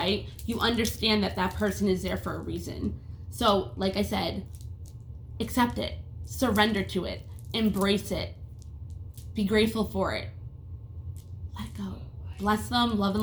You understand that that person is there for a reason. So, like I said, accept it. Surrender to it. Embrace it. Be grateful for it. Let it go. Bless them, love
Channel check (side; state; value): both; identical; correlation 1.00